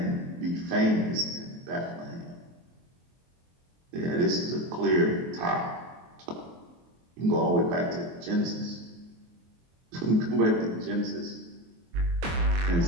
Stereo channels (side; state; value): left; late; 23 ms